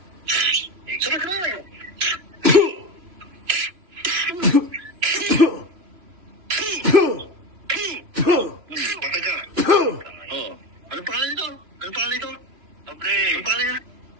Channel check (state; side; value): late; left; 2.8 ms